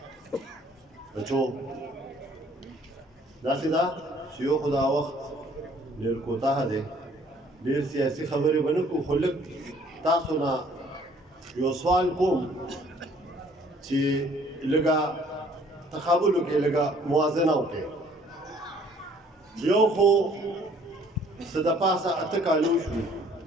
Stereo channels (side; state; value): both; normal; correlation 0.58